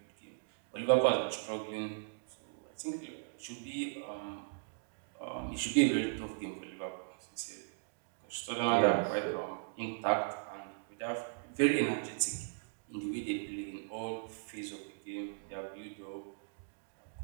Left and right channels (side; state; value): left; silent; digital silence